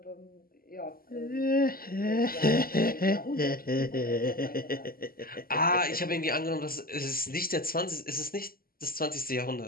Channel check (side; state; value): right; late; 0.42 ms